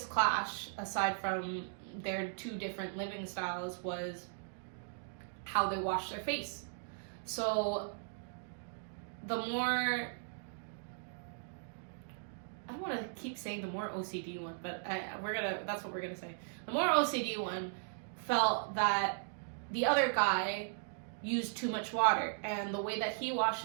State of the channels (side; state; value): left; silent; digital silence